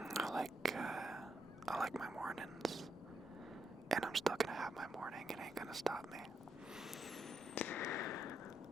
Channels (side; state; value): both; normal; correlation 0.80